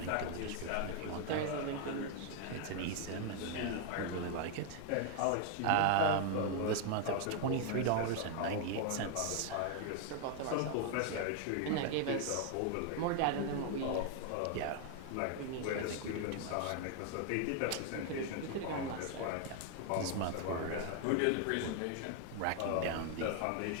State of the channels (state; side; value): different; both; correlation 0.00